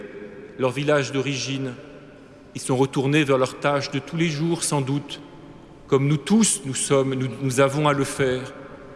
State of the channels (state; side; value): identical; both; correlation 1.00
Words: leur village d'origine. Ils sont retournés vers leurs tâches de tous les jours, sans doute, comme nous tous, nous avons à le faire.